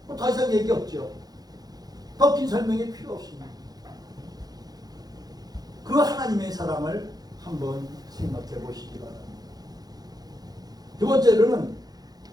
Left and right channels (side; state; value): left; late; 0.19 ms